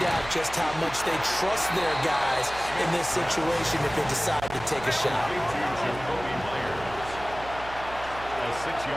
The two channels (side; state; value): right; noise; hum, 14 dB below the sound